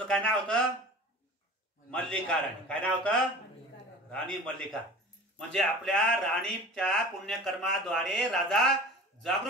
काय नाव होतं? मल्लिका राणी. काय नाव होतं? राणी मल्लिका. म्हणजे आपल्या राणीच्या पुण्यकर्माद्वारे राजा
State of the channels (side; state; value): both; normal; correlation 0.39